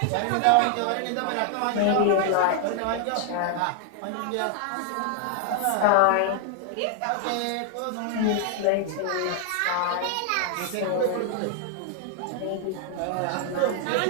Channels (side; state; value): both; different; correlation 0.00